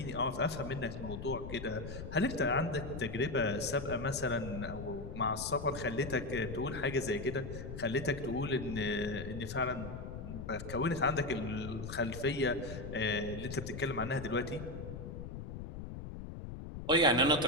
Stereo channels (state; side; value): noise; left; rumble, 8 dB below the sound